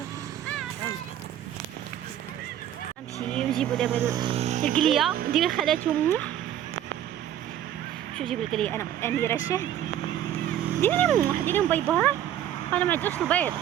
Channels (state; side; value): quieter; left; 11.2 dB